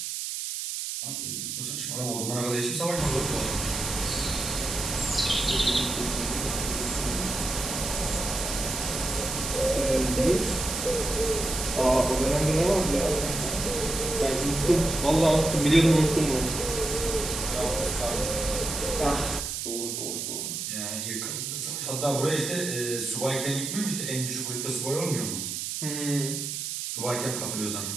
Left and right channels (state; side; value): noise; right; hiss, 4 dB below the sound